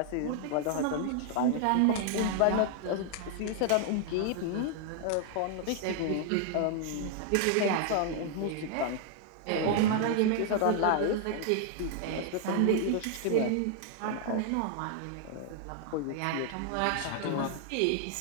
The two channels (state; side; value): different; both; correlation 0.00